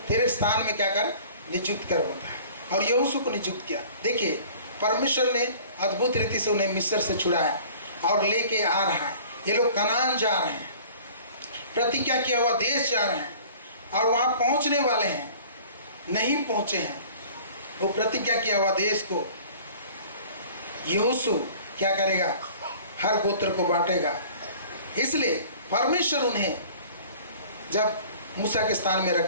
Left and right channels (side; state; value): both; inverted; correlation -0.47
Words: तेरे स्थान में क्या कर? नियुक्त कर होता है। और यहोशू को नियुक्त किया। देखिए, परमेश्वर ने अद्भुत रीति से उन्हें मिस्र से छुड़ाया और लेके आ रहा है। ये लोग कनान जा रहे हैं, प्रतिज्ञा किया हुआ देश जा रहे हैं और वहाँ पहुँचने वाले हैं, नहीं पहुँचे हैं। वो प्रतिज्ञा किया हुआ देश को यहोशू क्या करेगा? हर गोत्र को बांटेगा। इसलिए परमेश्वर उन्हें जब मूसा के स्थान में